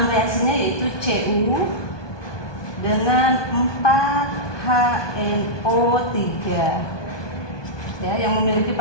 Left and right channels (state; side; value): late; right; 1.2 ms